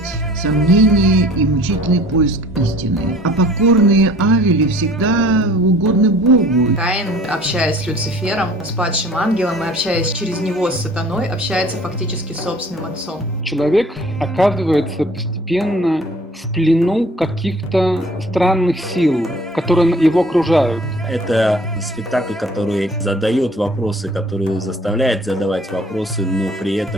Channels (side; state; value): both; normal; correlation 0.50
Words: сомнение и мучительный поиск истины. А покорные Авели всегда угодны Богу. Каин, общаясь с Люцифером, с падшим ангелом и общаясь через него с сатаной, общается фактически с собственным отцом. Человек оказывается постепенно в плену каких-то странных сил, которые его окружают. Это спектакль, который задает вопросы, который заставляет задавать вопросы, но при